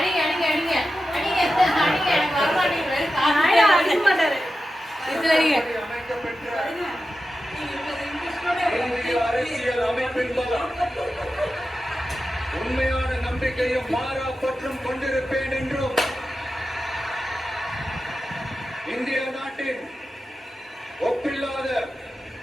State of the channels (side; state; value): both; normal; correlation 0.92